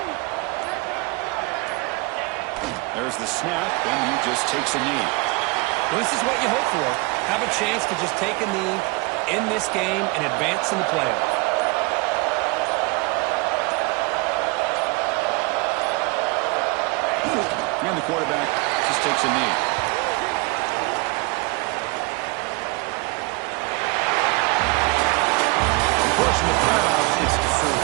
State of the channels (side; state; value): left; quieter; 26.2 dB